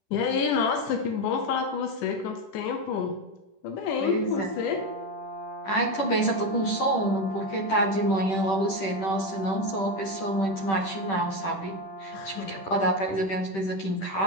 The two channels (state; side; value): late; right; 10 ms